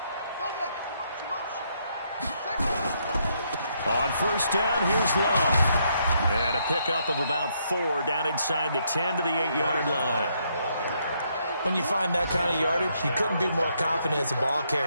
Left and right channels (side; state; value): both; inverted; correlation -0.74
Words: On 1st down, here's Love. And a pickup of about 4 down inside the 10 to the 8-yard line. When you find that kind of yardage, you couldn't be more confident as a ball